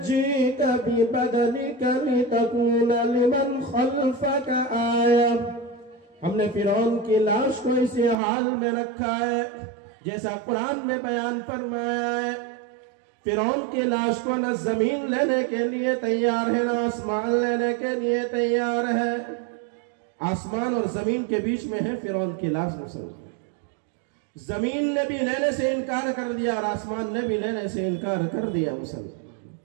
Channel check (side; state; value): left; drops out; at 8.2 s